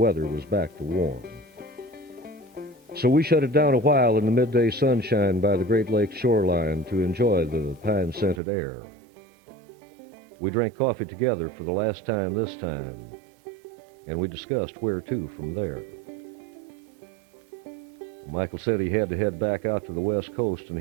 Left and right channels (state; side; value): drops out; left; at 8.4 s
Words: was back to warm. So we shut it down a while in the midday sunshine by the Great Lakes shoreline to enjoy the pine-scented air. We drank coffee together for the last time this time, and we discussed where to from there. Michael said he had to head back out to the west coast, and